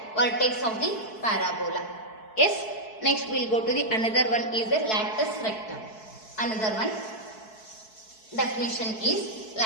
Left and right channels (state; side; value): late; right; 4.6 ms